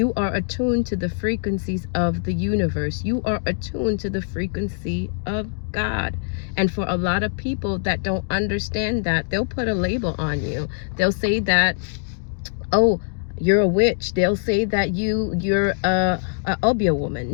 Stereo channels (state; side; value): silent; right; digital silence